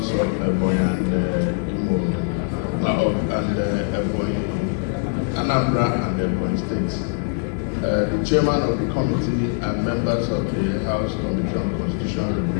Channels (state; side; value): quieter; right; 33.9 dB